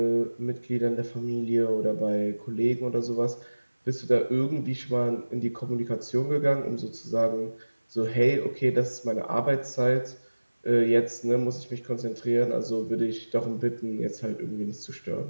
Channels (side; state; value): both; inverted; correlation -1.00